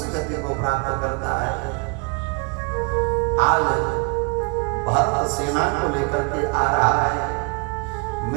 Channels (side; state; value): left; quieter; 34.2 dB